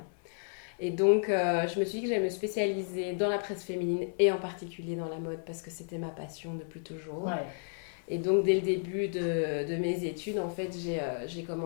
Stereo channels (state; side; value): silent; right; 56 dB below the other